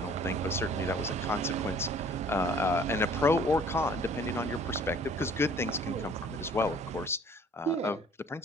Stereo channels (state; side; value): normal; both; correlation 0.53